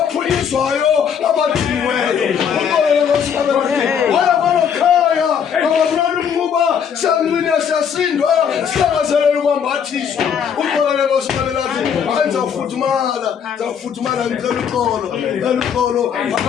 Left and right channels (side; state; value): right; quieter; 7.6 dB